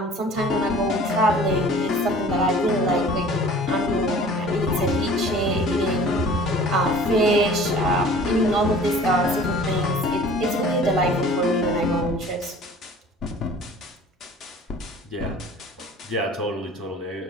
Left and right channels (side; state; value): both; normal; correlation 0.47